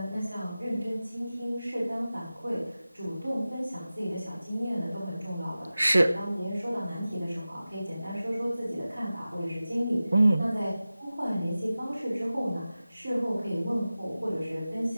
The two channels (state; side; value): inverted; both; correlation -0.96